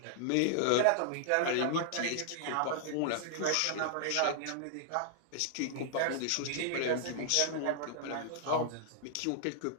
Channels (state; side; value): different; both; correlation -0.01